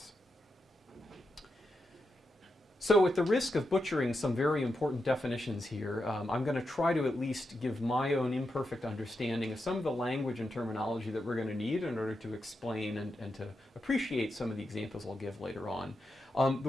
So at the risk of butchering some very important definitions here, I'm going to try to at least give my own imperfect understanding of some of the language and terminology that we're going to need in order to explain and to appreciate some of the examples I'll give later on.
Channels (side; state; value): both; normal; correlation 0.86